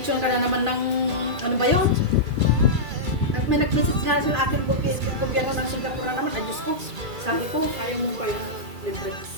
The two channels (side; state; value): left; late; 2.3 ms